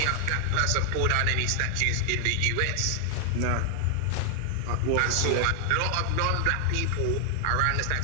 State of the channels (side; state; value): both; different; correlation 0.00